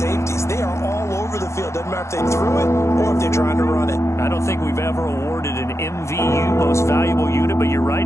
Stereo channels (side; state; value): right; late; 0.14 ms